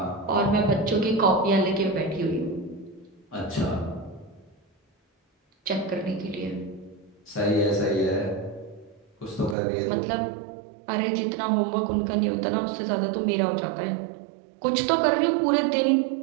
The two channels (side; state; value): left; drops out; at 9.6 s